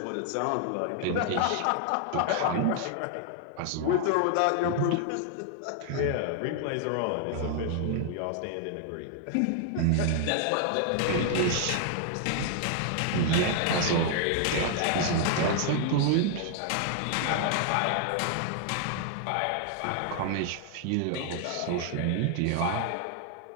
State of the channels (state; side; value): different; both; correlation 0.00